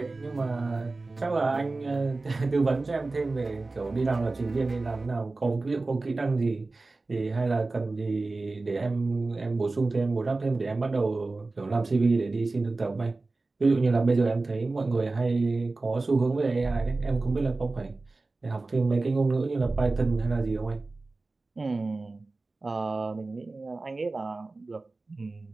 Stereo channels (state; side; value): quieter; left; 3.4 dB